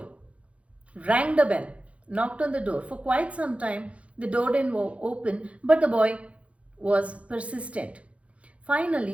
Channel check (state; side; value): late; left; 0.063 ms